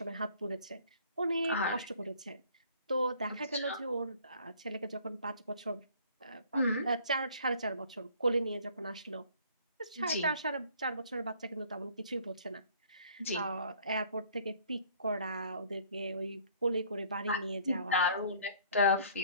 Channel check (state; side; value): inverted; both; correlation -0.56